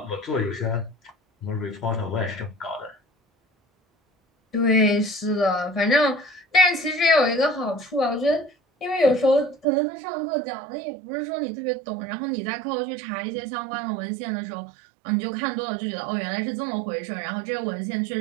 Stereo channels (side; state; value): left; drops out; at 9.7 s